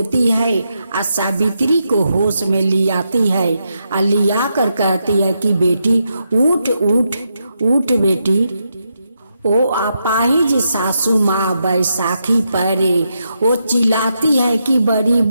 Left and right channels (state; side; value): inverted; both; correlation -0.83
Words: है और सावित्री को होश में ले आती है और लिया कर कहती है कि बेटी उठ उठ उठ बेटी। ओ अपाहिज सासू माँ बैसाखी परे, वो चिल्लाती है कि बड़ी